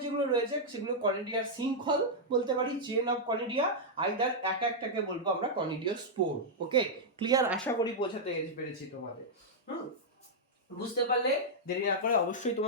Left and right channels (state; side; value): normal; both; correlation -0.05